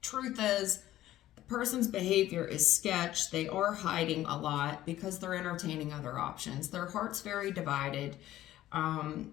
Truth is, the person's behavior is sketch. They are hiding a lot because they're entertaining other options. Their heart's very divided. To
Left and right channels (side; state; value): right; quieter; 14.1 dB